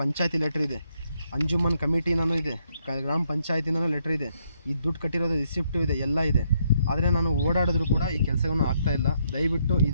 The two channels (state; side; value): inverted; both; correlation -0.74